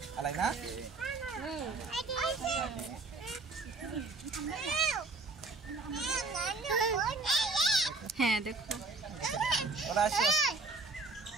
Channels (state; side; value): quieter; left; 3.7 dB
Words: আলাই না? হ্যাঁ দেখো, ওরা আসে।